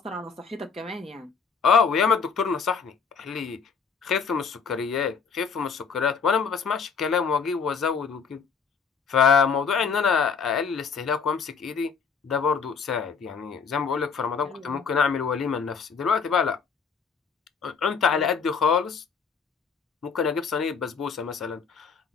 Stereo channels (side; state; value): right; quieter; 5.8 dB